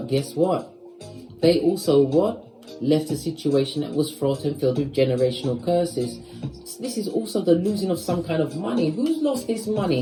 guess what? They also left a situation that was fraught and filled with generational curses. This is also the losing of some kind of money. Who's lost this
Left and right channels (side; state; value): both; identical; correlation 1.00